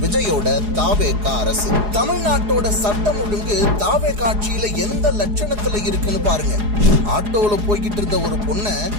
விஜயோட தாவேகா அரசு. தமிழ்நாட்டோட சட்டம் ஒழுங்கு தாவேகா ஆட்சியில எந்த லட்சணத்துல இருக்குன்னு பாருங்க. ஆட்டோல போய்கிட்டு இருந்த ஒரு பொண்ணை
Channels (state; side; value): late; left; 4.8 ms